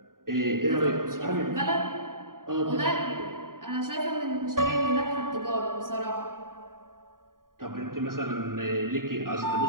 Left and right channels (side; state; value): left; late; 0.91 ms